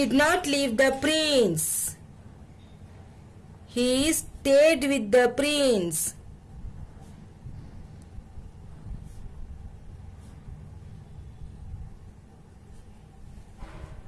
not leave the prince. He stayed with the prince.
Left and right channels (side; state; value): both; identical; correlation 1.00